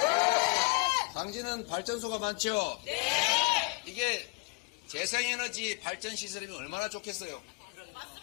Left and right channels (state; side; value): quieter; right; 29.0 dB